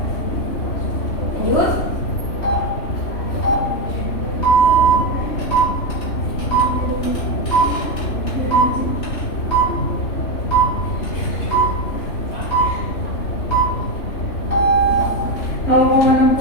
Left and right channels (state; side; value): late; right; 3.2 ms